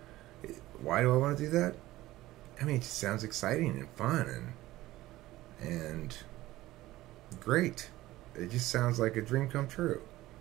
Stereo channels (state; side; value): quieter; left; 16.8 dB